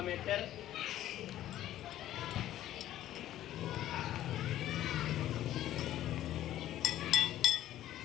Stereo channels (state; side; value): quieter; right; 13.1 dB